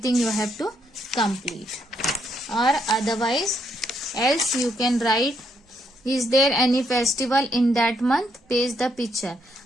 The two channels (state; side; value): normal; both; correlation 0.76